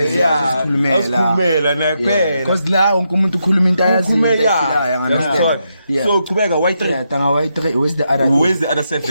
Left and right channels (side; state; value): both; inverted; correlation -0.82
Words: Yeah. Asikhulumela naye kuphela. Because la wonke umuntu ukhuluma into ayaziyo. Ukhulumela. Understand? Yeah. So qhubeka Y3. Yeah, tanga Y3 where's the other? Where's the other